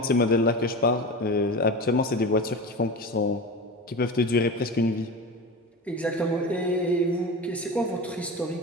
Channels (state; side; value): normal; both; correlation 0.28